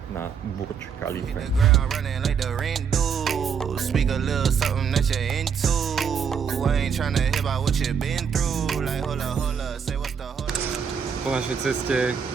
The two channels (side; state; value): left; quieter; 6.9 dB